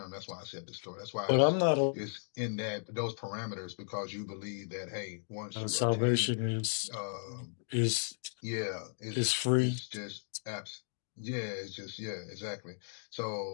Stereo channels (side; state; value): right; silent; digital silence